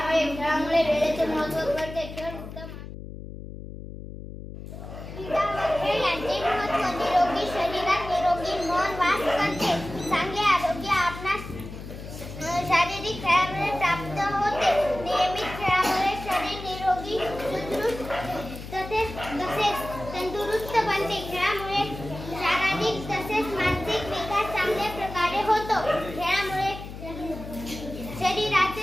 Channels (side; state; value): left; noise; hum, 11 dB below the sound